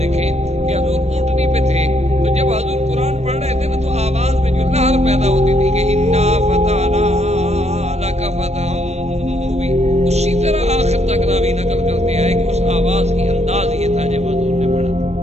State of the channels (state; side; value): late; left; 0.31 ms